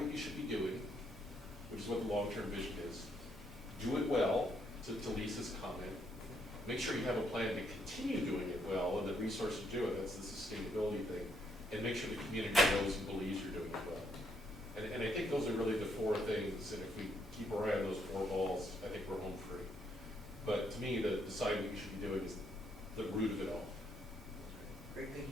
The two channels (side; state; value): both; normal; correlation 0.73